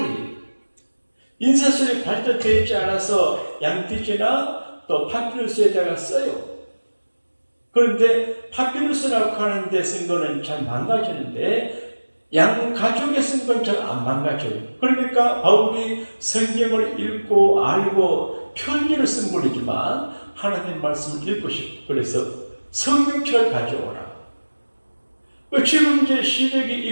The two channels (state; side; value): inverted; both; correlation -1.00